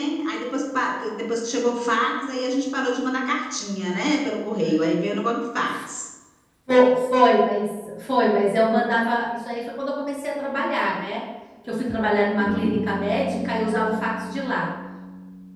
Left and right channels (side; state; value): both; identical; correlation 1.00